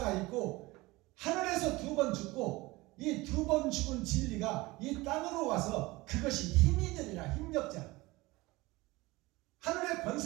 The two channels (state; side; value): quieter; left; 21.2 dB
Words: 있고 하늘에서 2번 죽고 이 2번 죽은 진리가 이 땅으로 와서 그것이 힘이 되리라. 힘력자. 하늘의